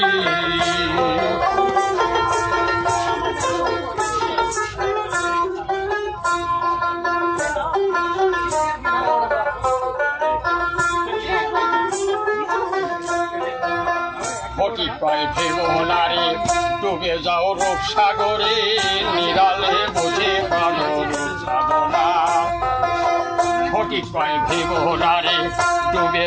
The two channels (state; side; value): identical; both; correlation 1.00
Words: ফটি পায় ভেবো নারী ডুবে যাও রূপসাগরে নিরালে বুঝে পারো রূপসাধনা ফটি পায় ভেবো নারী ডুবে